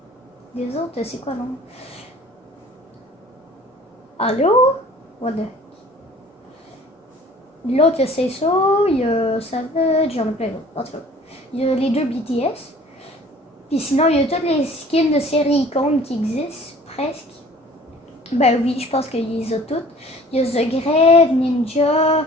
les autres, c'est quoi non? Allô? What the... L'autre, il y a Say So, il y a Savage, j'en ai plein d'autres. En tout cas, il y a les deux BTS. Puis sinon, il y a toutes les skins de séries icônes qui existent, presque. Ben oui, je pense qu'il les a toutes. Il y a The Grave, Ninja,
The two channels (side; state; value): both; normal; correlation 0.50